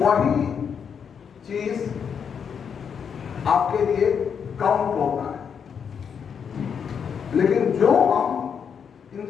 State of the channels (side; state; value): right; quieter; 7.1 dB